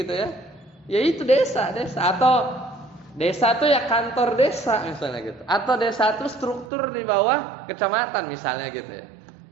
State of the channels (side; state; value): left; drops out; at 6.7 s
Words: gitu ya. Ya itu desa. Atau Desa tuh ya kantor desa misalnya gitu. Atau desa tuh struktur di bawah kecamatan misalnya gitu ya.